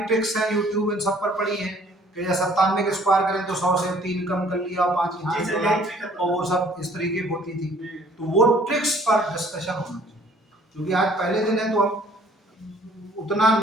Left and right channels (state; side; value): normal; both; correlation 0.57